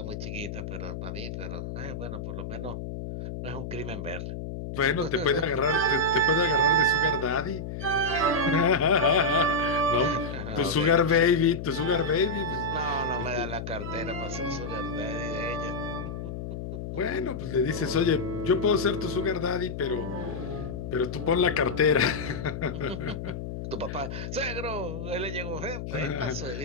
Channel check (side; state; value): left; noise; hum, 7 dB below the sound